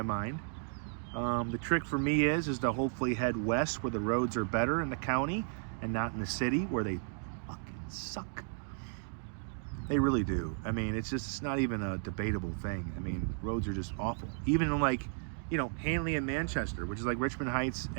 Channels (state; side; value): silent; left; 55 dB below the other